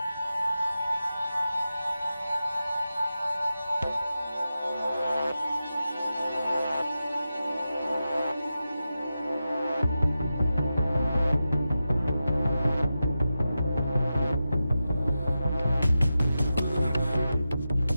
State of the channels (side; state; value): both; inverted; correlation -0.91